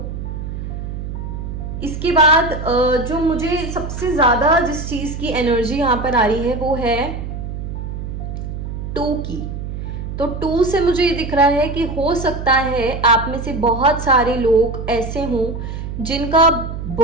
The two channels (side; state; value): right; noise; hum, 6 dB below the sound